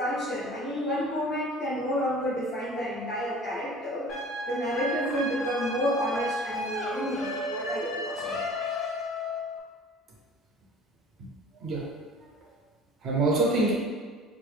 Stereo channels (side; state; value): both; normal; correlation 0.44